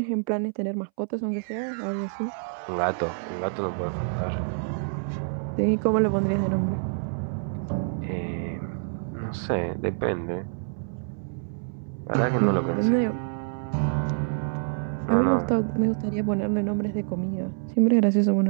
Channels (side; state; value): left; silent; 60 dB below the other